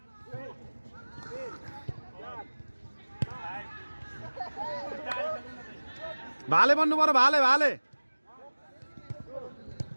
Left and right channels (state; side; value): inverted; both; correlation -1.00